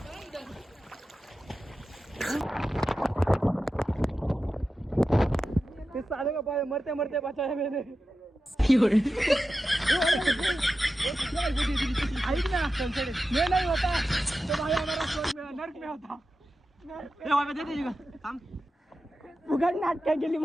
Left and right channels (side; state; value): both; normal; correlation 0.92